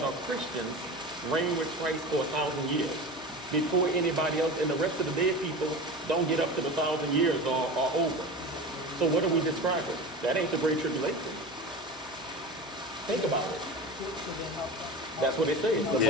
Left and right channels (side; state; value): both; normal; correlation 0.30